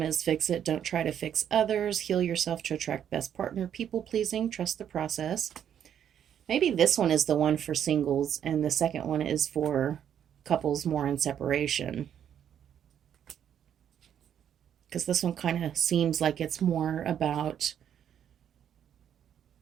Fix It. Don't try to fix others. Heal yourself to attract best partner. People pleasing. Trust the process. Maybe this one is the one for singles and the second one is for couples more in separation. Because this one kind of seems like it's more about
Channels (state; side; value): quieter; left; 9.3 dB